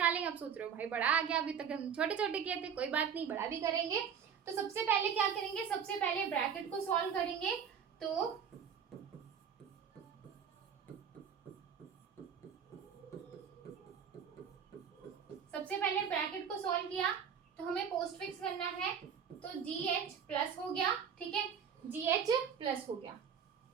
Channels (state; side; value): quieter; left; 7.5 dB